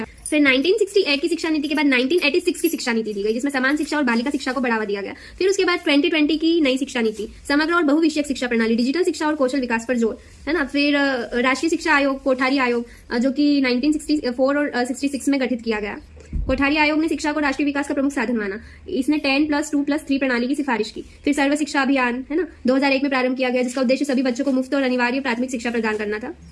फिर 1968 की शिक्षा नीति के बाद 1986 की शिक्षा नीति दी गई, जिसमें समान शिक्षा और बालिका शिक्षा को बढ़ावा दिया गया। फिर उसके बाद 2020 की नई शिक्षा नीति, समग्र और बहुविषयक शिक्षा प्रणाली, डिजिटल शिक्षा और कौशल विकास पर जोर है ना। फिर राष्ट्रीय शिक्षा आयोग, कोठारी आयोग, जो कि 1964 और 66 में गठित किया गया। कोठारी आयोग ने शिक्षा को राष्ट्रीय विकास का प्रमुख साधन माना। इसने 10+2+3 प्रणाली की सिफारिश की। फिर सर्व शिक्षा अभियान है ना 2001 में प्रारंभ किया गया, जिसका उद्देश्य सभी बच्चों को मुफ्त और अनिवार्य प्राथमिक शिक्षा प्रदान करना था।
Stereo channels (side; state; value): both; identical; correlation 1.00